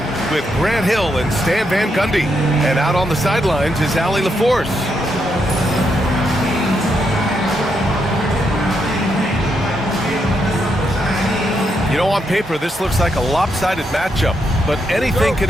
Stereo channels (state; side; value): normal; both; correlation 0.80